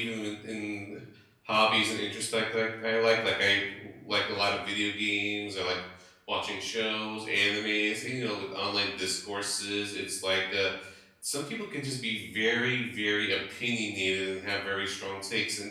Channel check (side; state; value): both; identical; correlation 1.00